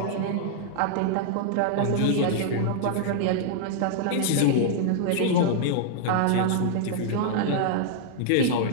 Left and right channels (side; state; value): both; different; correlation -0.01